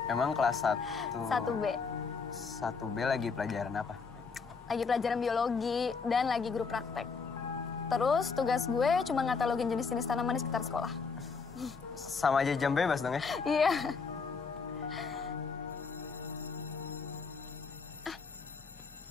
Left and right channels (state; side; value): quieter; right; 5.1 dB